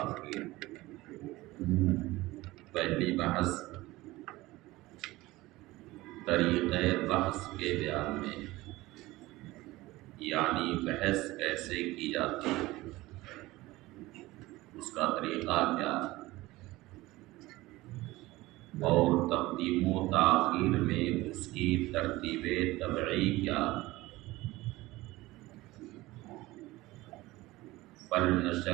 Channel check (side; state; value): left; quieter; 19.1 dB